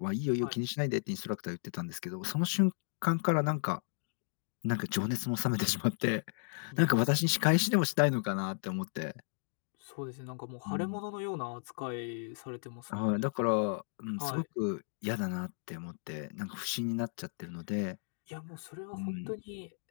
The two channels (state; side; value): silent; right; digital silence